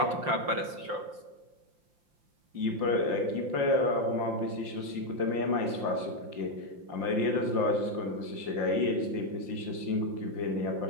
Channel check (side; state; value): left; late; 5.7 ms